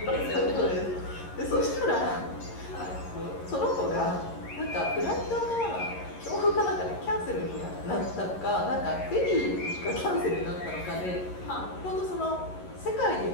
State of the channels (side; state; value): right; late; 11 ms